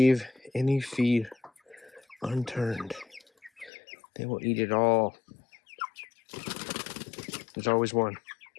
any feed unturned. They will eat it all. There's always one.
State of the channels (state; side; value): drops out; right; at 3.7 s